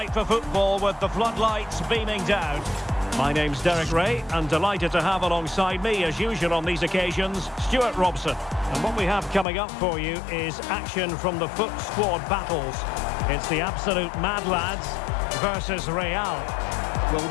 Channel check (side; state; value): right; drops out; at 9.5 s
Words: for football with the floodlights beaming down. My name's Derek Ray and delighted to have alongside me as usual on these occasions Stuart Robson. And what we have coming up for you is action from the FUT squad battles. It's the absolute mad lads versus Real. Well,